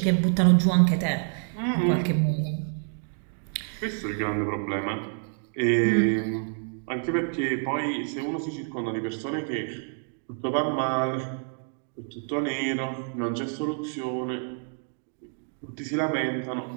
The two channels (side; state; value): left; silent; 58 dB below the other